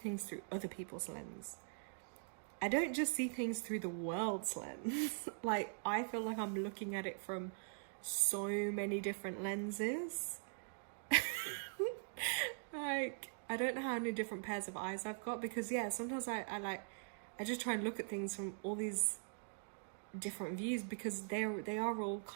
through other people's lens. I don't just see things through the world's lens. Like, I feel like I'm looking at it from so many different lenses. Like, I don't know how many different pairs of eyes I've got, because yeah, sometimes I just try and look at things from all these different views, because they are all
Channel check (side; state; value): left; silent; digital silence